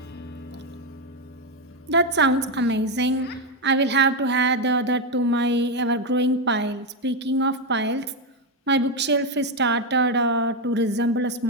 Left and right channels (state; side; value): normal; both; correlation 0.06